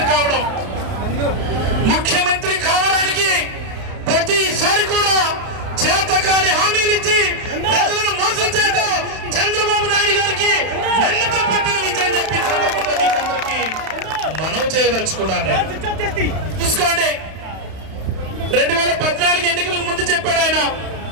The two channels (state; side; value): late; left; 31 ms